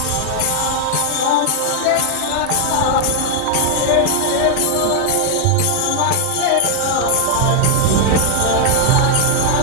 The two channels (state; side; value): different; both; correlation 0.00